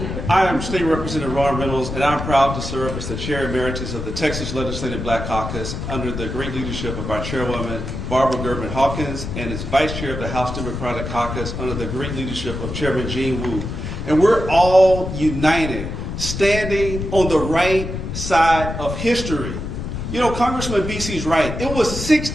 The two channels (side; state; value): left; noise; rumble, 6 dB below the sound